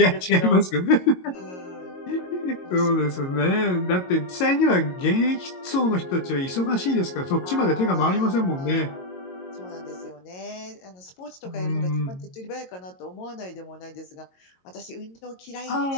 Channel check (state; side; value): late; right; 22 ms